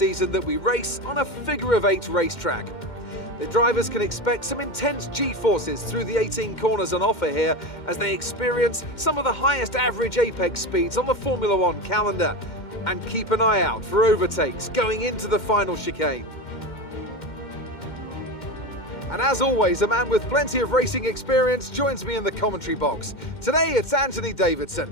that we race on a figure-of-8 racetrack. The drivers can expect some intense G-forces through the 18 corners on offer here as they experience some of the highest average apex speeds on the Formula One calendar. And keep an eye out for overtakes going into the final chicane. And as always, a man with plenty of racing experience joins me in the commentary box. Today it's Anthony Davidson.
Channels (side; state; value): right; late; 2.1 ms